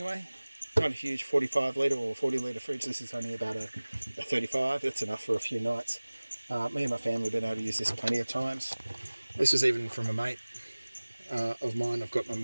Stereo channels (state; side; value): inverted; both; correlation -1.00